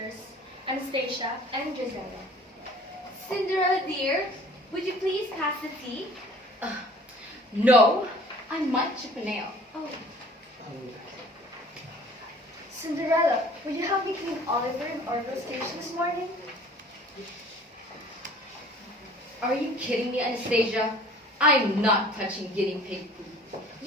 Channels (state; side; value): normal; both; correlation 0.49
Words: Anastasia and Gisela. Cinderella dear, would you please pass the tea? No, I might chip a nail. Oh. Cinderella, will you help me clean Oliver and Orville station this morning? Are you kidding me, Anastasia? I'm not touching guinea pig food.